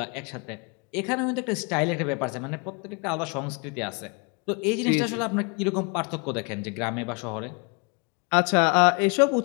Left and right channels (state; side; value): quieter; right; 33.3 dB